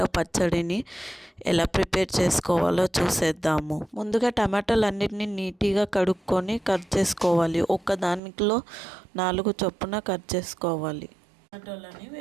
పచ్చడిని ఎలా ప్రిపేర్ చేసుకోవాలో చూసేద్దాము. ముందుగా టమాటాలన్నిటిని నీట్గా కడుక్కొని కట్ చేసుకోవాలి. ఒక దానిలో 4 చొప్పున కట్ చేసుకోవాలి. టమాటోలని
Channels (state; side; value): drops out; left; at 8.2 s